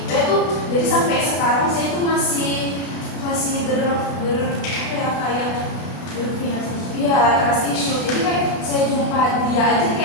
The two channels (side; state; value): right; late; 32 ms